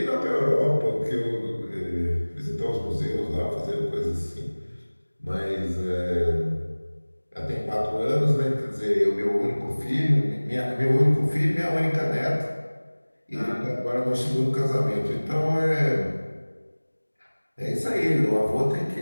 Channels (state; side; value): inverted; both; correlation -1.00